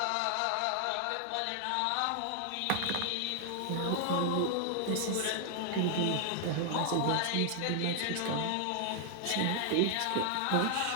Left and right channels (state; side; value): different; both; correlation 0.00